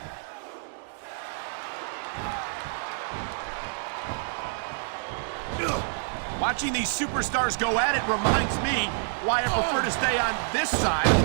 Watching these superstars go at it reminds me why I prefer to stay on this side of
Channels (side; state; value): left; silent; digital silence